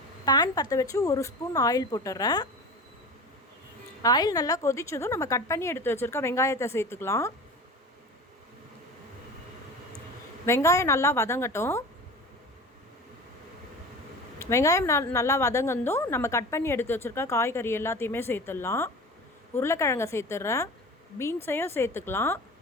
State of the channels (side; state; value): both; normal; correlation 0.34